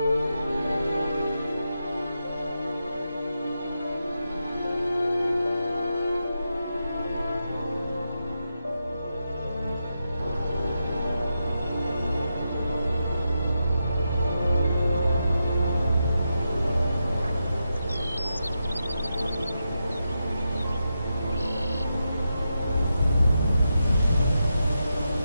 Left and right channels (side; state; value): both; inverted; correlation -0.87